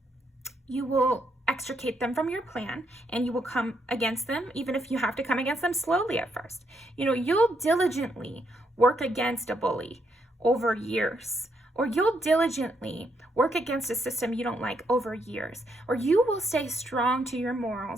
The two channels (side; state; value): both; normal; correlation 0.76